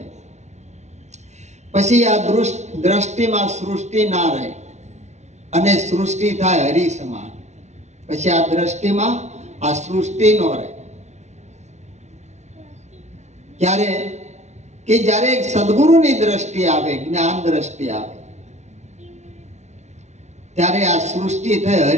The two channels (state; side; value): late; left; 0.32 ms